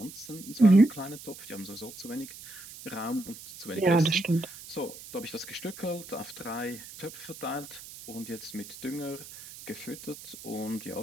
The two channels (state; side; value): noise; right; hiss, 15 dB below the sound